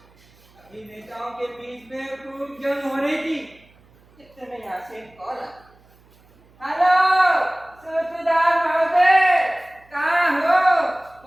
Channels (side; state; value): right; noise; hum, 30 dB below the sound